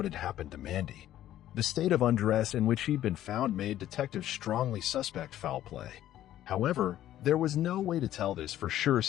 had happened to Mandy. The state of undress in which she'd been found made detectives strongly suspect foul play. However, there was no way to tell this for sure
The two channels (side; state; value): right; quieter; 12.7 dB